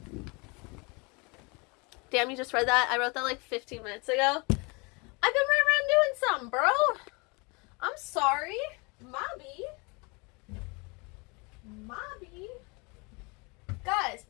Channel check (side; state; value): right; quieter; 29.2 dB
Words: Damn, you just read that? I wrote that like 15 minutes ago. I've been right around doing something, bro. I'm sorry. Mobby. Guys,